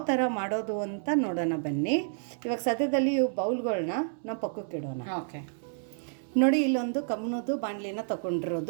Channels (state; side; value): silent; left; 58 dB below the other